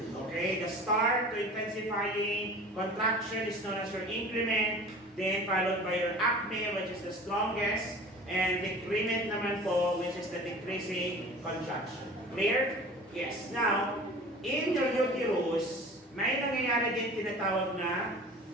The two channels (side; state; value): both; normal; correlation 0.41